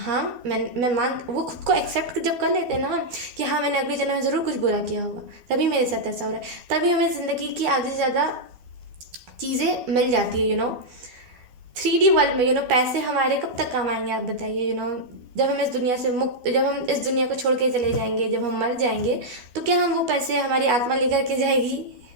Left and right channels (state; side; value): late; left; 12 ms